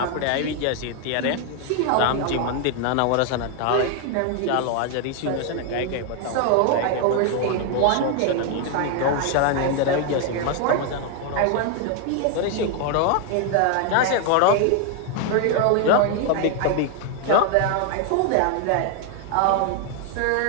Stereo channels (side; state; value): both; different; correlation 0.01